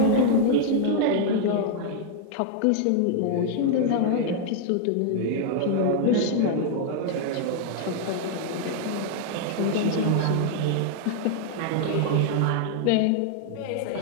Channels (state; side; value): different; both; correlation 0.00